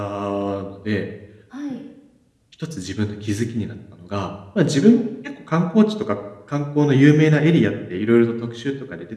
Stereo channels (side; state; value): both; identical; correlation 1.00